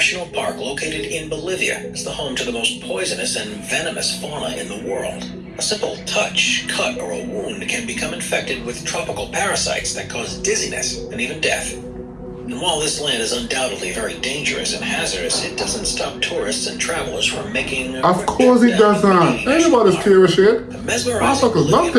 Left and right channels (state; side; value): identical; both; correlation 1.00